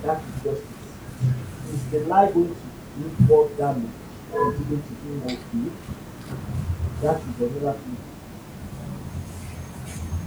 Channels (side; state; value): both; identical; correlation 1.00